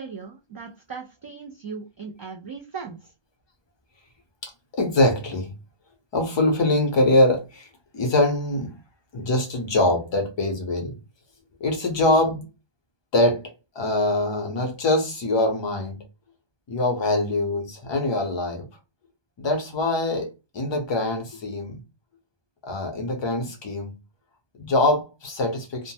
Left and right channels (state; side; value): late; right; 1.2 ms